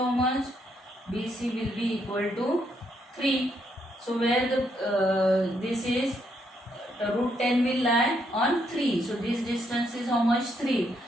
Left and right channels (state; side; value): normal; both; correlation 0.75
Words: much? BC will be equal to 3. So where the this is, root 10 will lie on 3. So this distance is how much? 3.